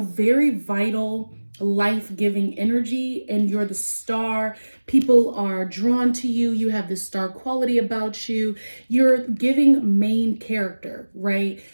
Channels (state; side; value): inverted; both; correlation -1.00